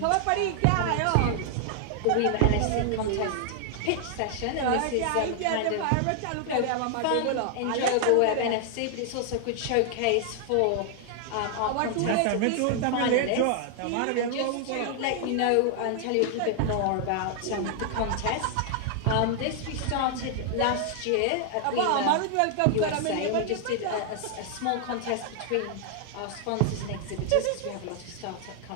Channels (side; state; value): both; different; correlation 0.00